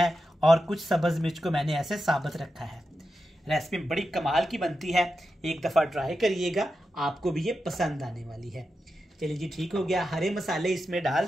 और कुछ सब्ज मिर्च को मैंने ऐसे साबुत रखा है। रेसिपी बड़ी कमाल की बनती है, एक दफा ट्राई करिएगा, आपको भी ये पसंद आने वाली है। चलिए जी, ठीक हो गया। हरे मसाले इसमें डाल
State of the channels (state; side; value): normal; both; correlation 0.89